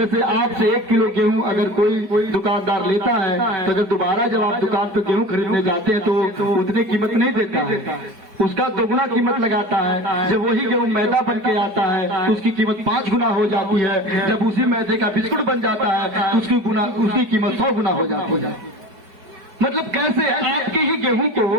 आपसे 1 किलो गेहूं अगर कोई दुकानदार लेता है तो अगर दोबारा जब आप दुकान पर गेहूं खरीदने जाते हैं तो उतनी कीमत नहीं देता है, उसका दोगुना कीमत लगाता है। जब वही गेहूं मैदा बन के आता है तो उसकी कीमत 5 गुना हो जाती है। जब उसी मैदे का बिस्कुट बन जाता है तो उसकी कीमत 100 गुना हो जाती है। मतलब कैसे आपके ही गेहूं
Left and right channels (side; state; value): left; late; 4.7 ms